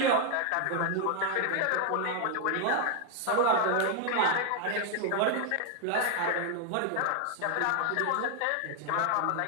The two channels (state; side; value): different; both; correlation 0.00